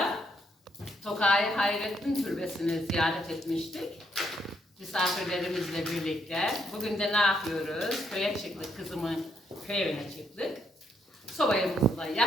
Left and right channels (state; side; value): normal; both; correlation 0.74